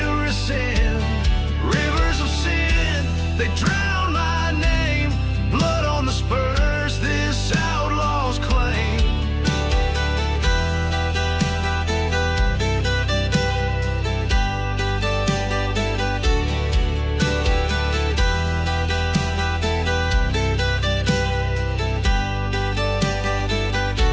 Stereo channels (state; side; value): identical; both; correlation 1.00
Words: rescind. Rivers of sin, they drown my name. Blood on the spurs, this outlaw's claim.